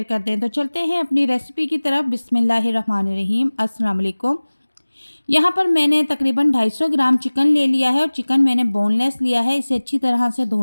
कर दें। तो चलते हैं अपनी रेसिपी की तरफ। बिस्मिल्लाहिर्रहमानिर्रहीम, अस्सलाम वालेकुम। यहाँ पर मैंने तकरीबन 250 ग्राम चिकन ले लिया है और चिकन मैंने बोनलेस लिया है। इसे अच्छी तरह से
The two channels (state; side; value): inverted; both; correlation -1.00